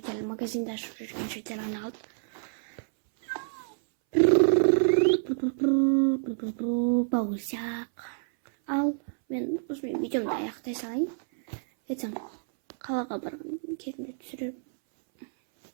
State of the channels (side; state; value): left; silent; 59 dB below the other